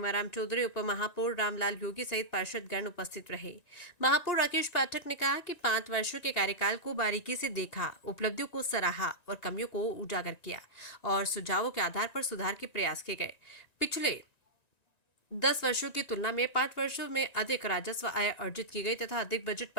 चौधरी, उप महापौर रामलाल योगी सहित पार्षदगण उपस्थित रहे। महापौर राकेश पाठक ने कहा कि 5 वर्षों के कार्यकाल को बारीकी से देखा, उपलब्धियों को सराहा और कमियों को उजागर किया और सुझावों के आधार पर सुधार के प्रयास किए गए। पिछले 10 वर्षों की तुलना में 5 वर्षों में अधिक राजस्व आय अर्जित की गई तथा अधिक बजट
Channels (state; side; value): late; right; 1.9 ms